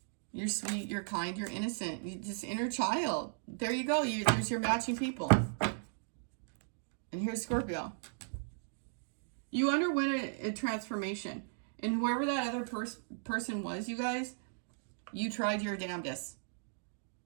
You're sweet, you're kind, you're innocent. You're just inner child. There you go. There's your matching people. And here's Scorpio. You underwent a transformation. And whoever that other person was, you guys, you tried your damnedest.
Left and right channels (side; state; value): left; silent; digital silence